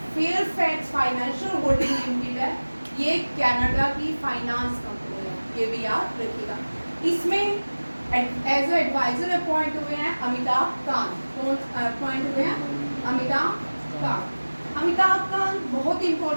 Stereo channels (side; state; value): both; inverted; correlation -1.00